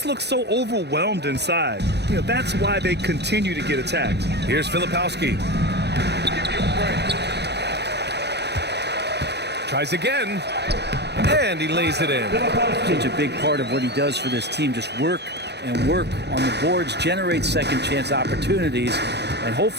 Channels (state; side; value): late; left; 0.49 ms